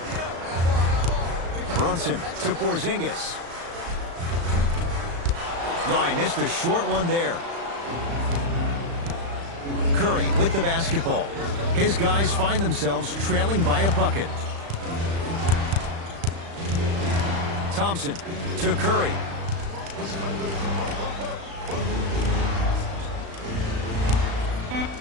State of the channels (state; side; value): late; left; 35 ms